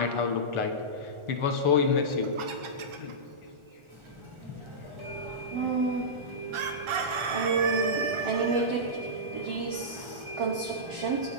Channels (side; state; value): left; late; 1.4 ms